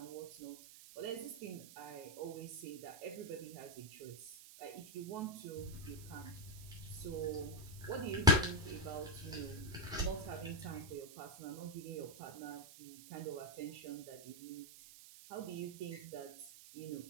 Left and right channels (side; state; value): right; noise; hiss, 15 dB below the sound